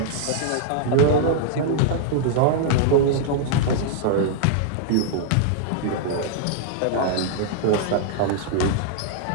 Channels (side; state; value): both; different; correlation -0.01